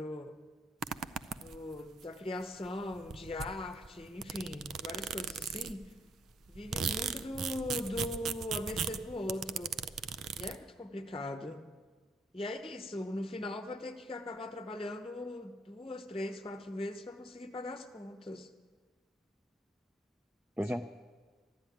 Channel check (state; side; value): normal; both; correlation 0.69